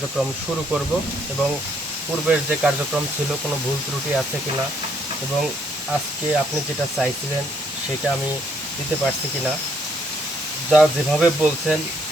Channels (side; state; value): both; normal; correlation 0.70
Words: শুরু করব, এবং পূর্বের যে কার্যক্রম ছিল কোনো ভুল ত্রুটি আছে কিনা, এবং আজকে আপনি যেটা চাইছিলেন সেটা আমি দিতে পারছি কিনা, যা যেভাবে বলছেন